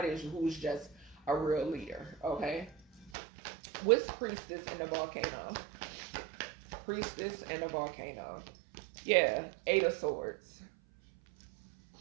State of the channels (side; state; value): left; drops out; at 3.1 s